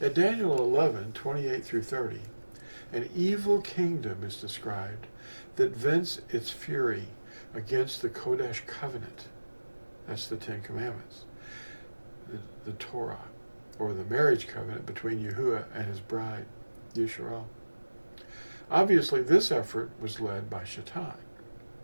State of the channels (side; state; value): both; inverted; correlation -1.00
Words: At Daniel 11, 28 through 30, an evil kingdom is described that vents its fury against the Kodesh covenant. That's the Ten Commandments. The Torah, or the marriage covenant between Yahuwah and his bride, Yisrael. Obviously, this effort was led by Shaitan.